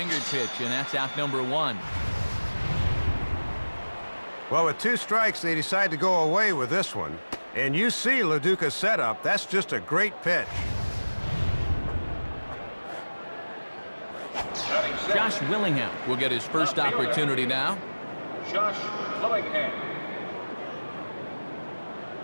pitch, and that's out number 1. Well, with 2 strikes, they decide to go away with this one. And you see LoDuca's setup. That's just a great pitch. Josh Willingham will get his first opportunity now. Josh Willingham.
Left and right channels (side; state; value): both; inverted; correlation -1.00